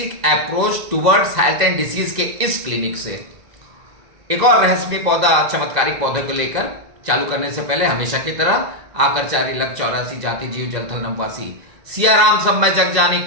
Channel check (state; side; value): late; left; 2.0 ms